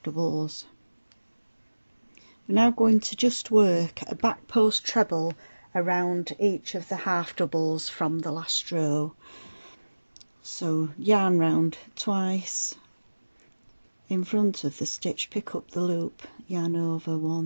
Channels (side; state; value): both; inverted; correlation -1.00